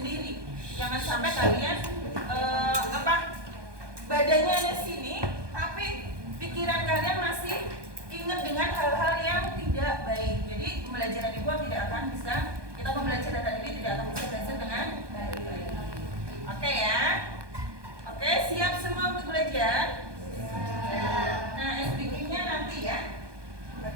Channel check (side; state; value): left; late; 1.2 ms